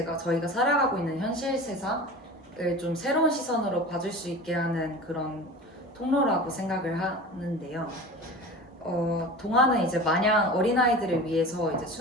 살아가고 있는 현실 세상을 좀 새로운 시선으로 봐줄 수 있게 하는 그런 통로라고 생각을 하는데요. 동화는 이제 마냥 어린아이들을 위해서 이제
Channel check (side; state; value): both; normal; correlation 0.35